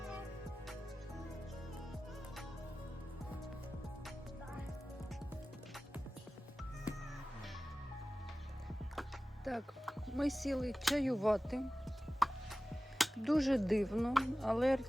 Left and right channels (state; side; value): normal; both; correlation 0.96